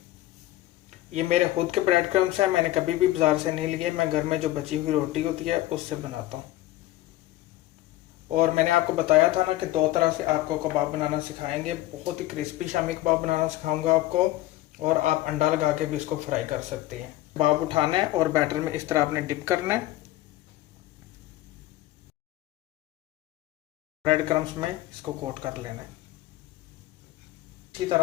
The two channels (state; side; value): quieter; right; 15.8 dB